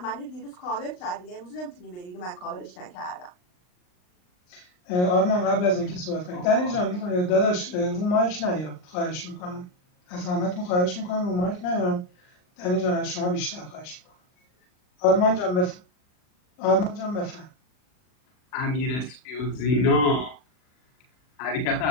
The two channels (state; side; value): late; right; 39 ms